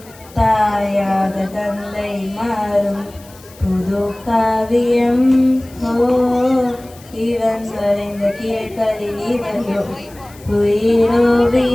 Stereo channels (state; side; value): noise; left; hiss, 23 dB below the sound